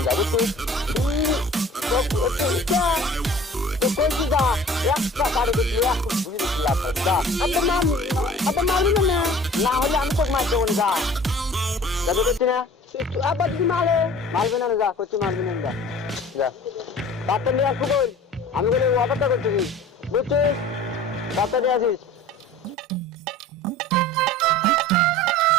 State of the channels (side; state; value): both; normal; correlation 0.45